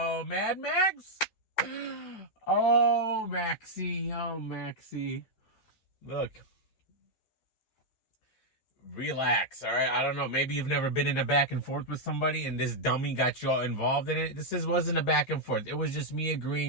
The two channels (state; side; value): late; right; 13 ms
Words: Mad Max? Oh, Maxie. Look. Relax, all right? I don't know. Maybe you've never been in a back and forth with somebody and this dummy got you all involved in it. Wasn't a back and forth. It was just me